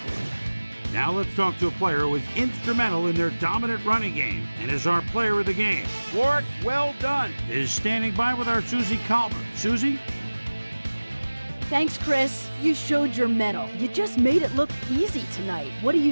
Now let's talk to a player who was instrumental in their dominant running game and is our player of the game. Warwick, well done, is standing by with our Susie Calvert. Susie? Thanks, Chris. You showed your mettle. You just made it look easy tonight. What do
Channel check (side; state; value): both; inverted; correlation -1.00